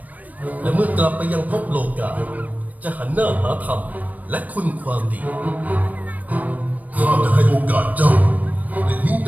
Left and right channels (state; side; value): late; left; 0.076 ms